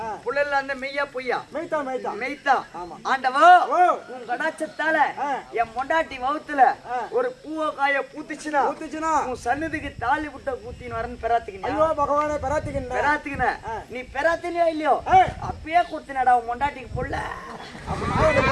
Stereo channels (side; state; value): both; identical; correlation 1.00